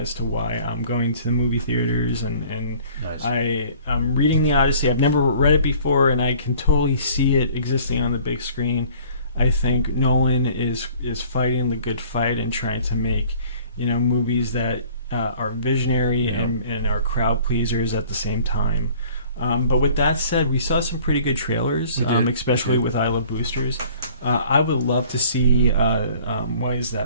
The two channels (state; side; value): inverted; both; correlation -0.52